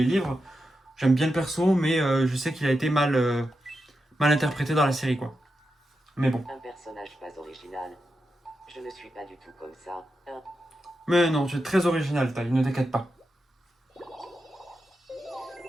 livres. J'aime bien le perso, mais je sais qu'il a été mal interprété dans la série quoi. Mais bon. Un personnage pas original. Je ne suis pas du tout comme ça. Mais non, tu es très original, Taille, ne t'inquiète pas.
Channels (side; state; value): both; normal; correlation 0.88